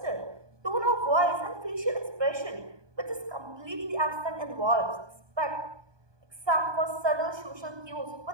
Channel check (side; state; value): left; late; 1.2 ms